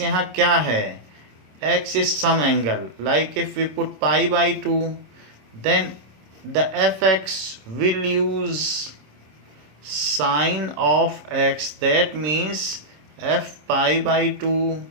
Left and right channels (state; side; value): late; left; 26 ms